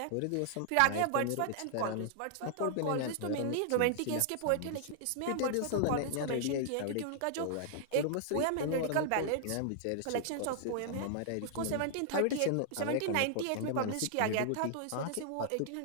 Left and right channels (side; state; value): both; different; correlation -0.01